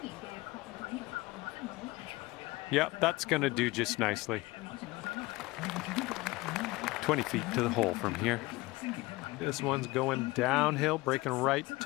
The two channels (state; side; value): quieter; right; 21.0 dB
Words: Yep, that's going to do just nicely. 20 feet to the hole from here. This one's going downhill, breaking right